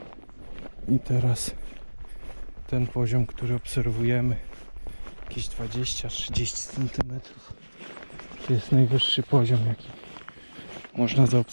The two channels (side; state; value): both; inverted; correlation -1.00